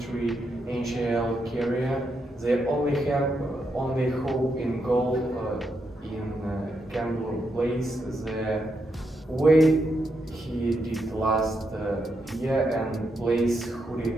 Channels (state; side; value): normal; both; correlation 0.82